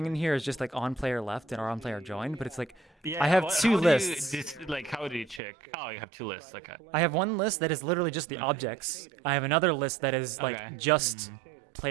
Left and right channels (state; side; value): drops out; left; at 5.4 s